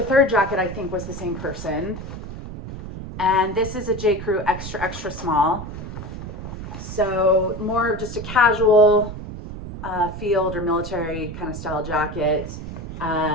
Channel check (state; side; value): noise; right; rumble, 9 dB below the sound